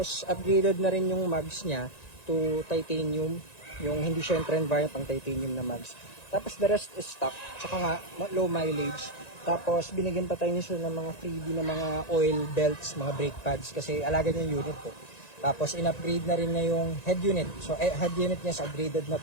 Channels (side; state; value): right; late; 1.9 ms